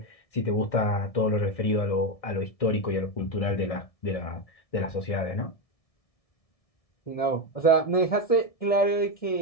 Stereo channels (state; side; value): late; right; 1.6 ms